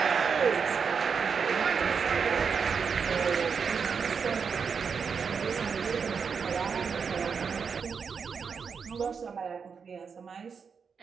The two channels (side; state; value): left; quieter; 6.0 dB